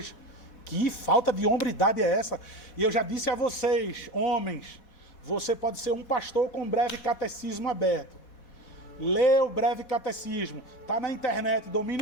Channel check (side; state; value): right; late; 4.2 ms